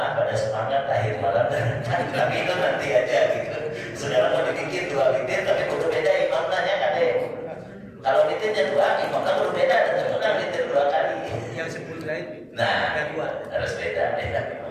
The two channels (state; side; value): identical; both; correlation 1.00